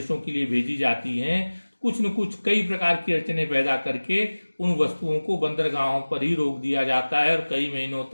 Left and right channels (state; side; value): inverted; both; correlation -1.00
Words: के लिए भेजी जाती हैं, कुछ न कुछ कई प्रकार की अड़चनें पैदा करके उन वस्तुओं को बंदरगाहों पर ही रोक दिया जाता है और कई महीनों